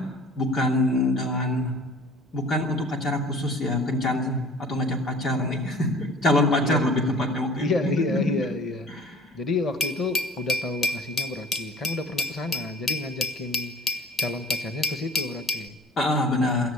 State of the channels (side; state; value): both; normal; correlation 0.47